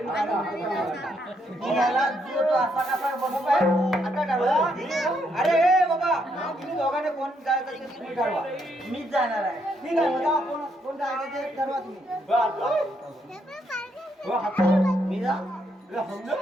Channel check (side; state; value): both; normal; correlation 0.75